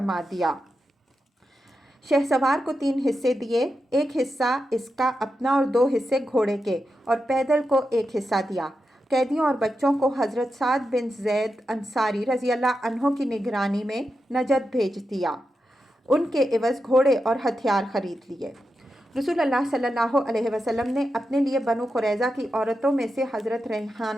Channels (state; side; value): normal; both; correlation 0.88